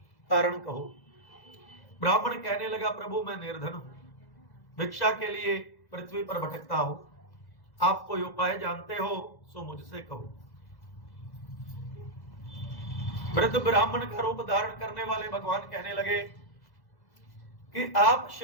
कारण कहो। ब्राह्मण कहने लगा, प्रभु मैं निर्धन हूं, भिक्षा के लिए पृथ्वी पर भटकता हूं, आप कोई उपाय जानते हो सो मुझसे कहो। वृद्ध ब्राह्मण का रूप धारण करने वाले भगवान कहने लगे कि आप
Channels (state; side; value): late; right; 1.1 ms